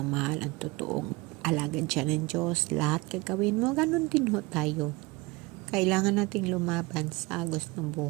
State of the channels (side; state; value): left; quieter; 23.3 dB